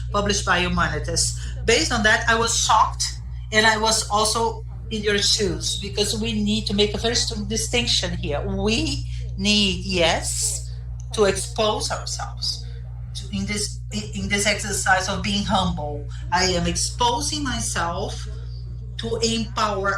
published by Humanitas. Based on that, I was shocked, and I was also in your shoes, because we need to make a very strong distinction here. We need, yes, to expose ourselves in this exercise of being humble. I am exposing myself to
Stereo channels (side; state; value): both; identical; correlation 1.00